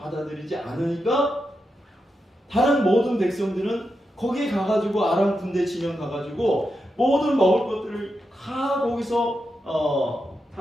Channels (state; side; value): normal; both; correlation 0.87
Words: 않으니까 다른 모든 백성들은 거기 가가지고 아람 군대 진영 가가지고 모든 먹을 것들을 다 거기서